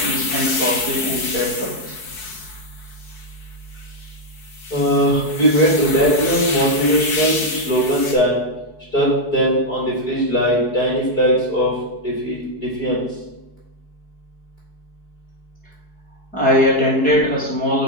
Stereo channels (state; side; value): late; right; 4.7 ms